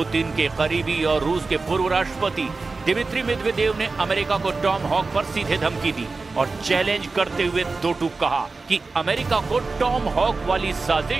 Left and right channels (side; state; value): left; quieter; 3.9 dB